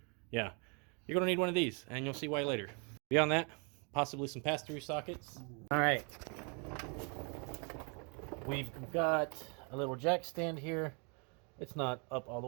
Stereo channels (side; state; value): left; quieter; 35.4 dB